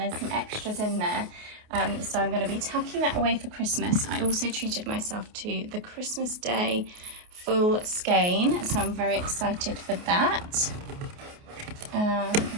some extras in there. So I'm going to be tucking that away for Christmas. I also treated myself to the Christmas Day full skein, so I'm very excited for that.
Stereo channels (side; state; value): left; late; 28 ms